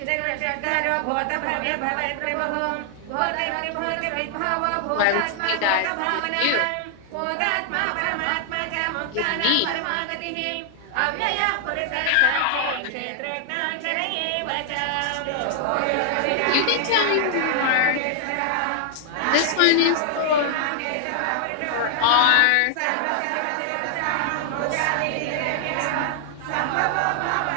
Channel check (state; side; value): different; both; correlation 0.00